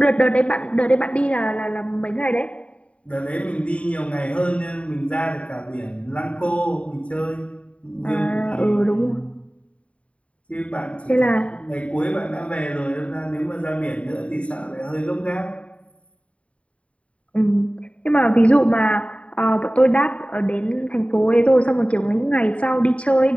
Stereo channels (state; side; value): late; right; 0.063 ms